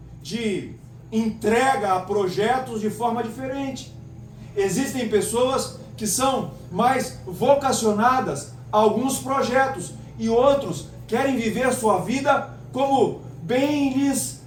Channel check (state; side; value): identical; both; correlation 1.00